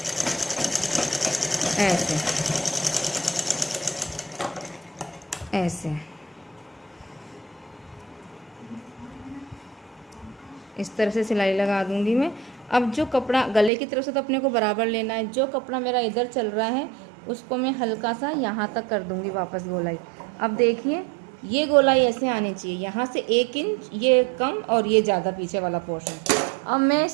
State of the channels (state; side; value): drops out; left; at 13.7 s